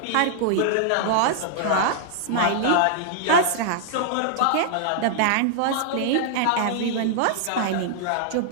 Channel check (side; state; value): both; different; correlation -0.01